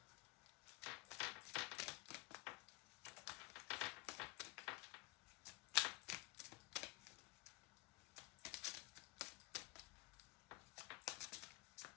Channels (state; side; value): quieter; right; 22.6 dB